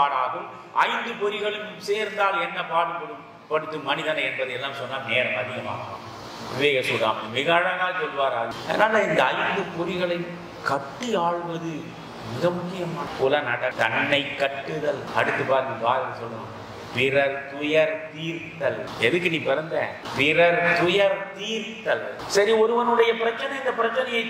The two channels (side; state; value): both; identical; correlation 1.00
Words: 5 பொறிகளும் சேர்ந்தால் என்ன பாடுபடுத்தும் மனிதனை என்பதை எல்லாம் சொன்னால் நேரம் அதிகமாகும். விவேக சூடாமணி மிக அழகாக சொல்வார். அதனால இந்த 5 பொறிகளை கட்டி ஆள்வது மிக முக்கியமான புலனட. தன்னை கட்டுதல். அடுத்து பாருங்க, பாரதி சொல்றான், பிறர் துயர் தீர்த்தல். எதுக்கு நீ பிறந்த? பிறர் துயர் தீர்த்தல். சரி, ஒருவனுடைய பிரச்சனை, இந்த பிரச்சனையை